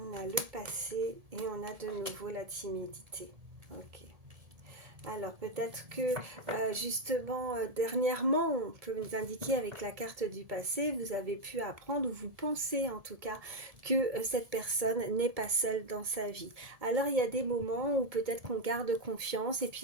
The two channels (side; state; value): left; late; 1.7 ms